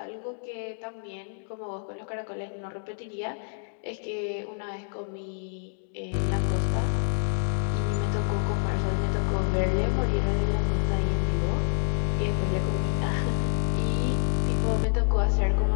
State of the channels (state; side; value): silent; right; digital silence